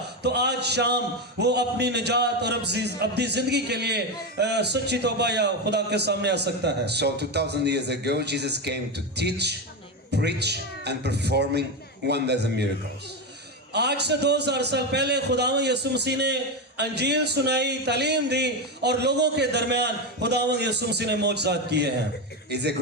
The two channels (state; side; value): normal; both; correlation 0.14